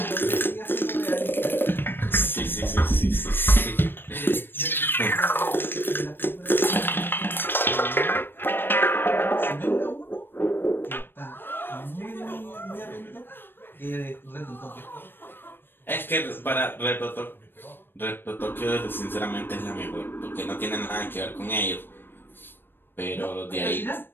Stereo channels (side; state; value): right; late; 0.098 ms